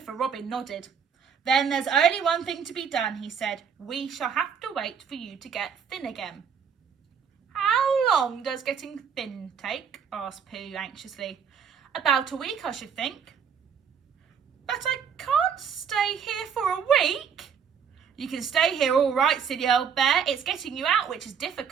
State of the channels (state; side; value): quieter; left; 7.1 dB